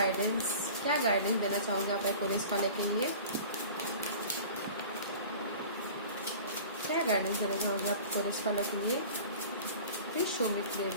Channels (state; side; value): inverted; both; correlation -0.40